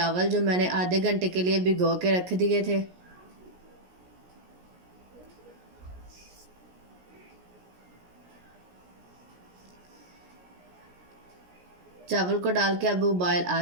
जो मैंने आधे घंटे के लिए भिगो के रख दिए थे। चावल को डाल के अब उबाल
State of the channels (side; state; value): left; late; 17 ms